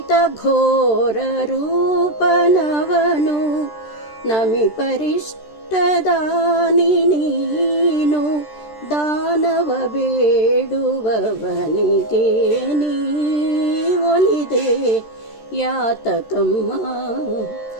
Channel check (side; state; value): right; late; 13 ms